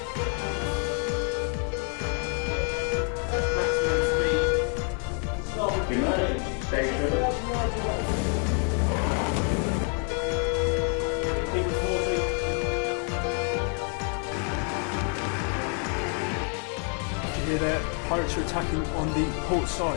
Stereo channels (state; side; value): quieter; right; 38.7 dB